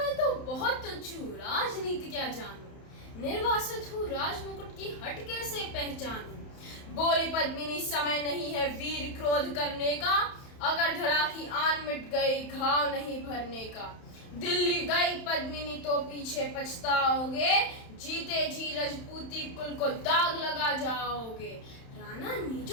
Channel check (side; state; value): right; late; 31 ms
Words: तो बहुत तुच्छ हूँ, राजनीति क्या जानूं, निर्वासित हूँ राजमुकुट की हट कैसे पहचानूं। बोली पद्मिनी समय नहीं है वीर क्रोध करने का, अगर धरा की आन मिट गई घाव नहीं भरने का। दिल्ली गई पद्मिनी तो पीछे पछताओगे, जीते जी रजपूती कुल को दाग लगा जाओगे। राणा ने